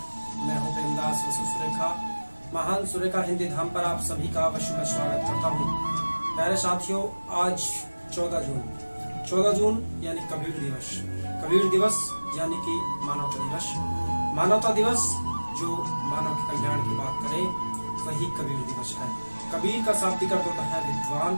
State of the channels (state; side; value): inverted; both; correlation -1.00